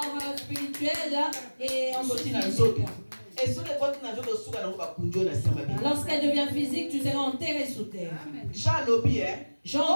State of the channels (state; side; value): inverted; both; correlation -1.00